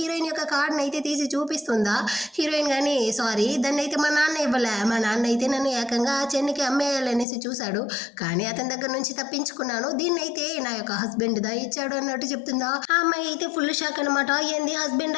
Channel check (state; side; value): drops out; right; at 7.2 s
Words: యొక్క కార్డుని అయితే తీసి చూపిస్తుందా. హీరోయిన్ కానీ సారీ దాన్ని అయితే మా నాన్న ఇవ్వలే, మా నాన్న అయితే నన్ను ఏకంగా చెన్నికి అమ్మేయాలనేసి చూశాడు, కానీ అతని దగ్గర నుంచి తప్పించుకున్నాను, దీన్ని అయితే నా యొక్క హస్బెండ్ దా ఇచ్చాడు అన్నట్టు చెప్తుందా. ఆ అమ్మాయి అయితే ఫుల్ షాక్ అనమాట. ఏంది హస్బెండ్,